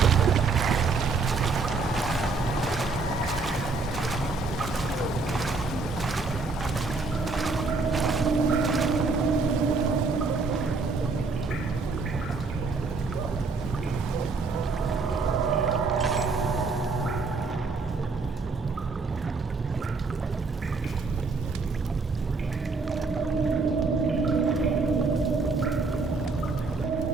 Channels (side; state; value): left; quieter; 4.1 dB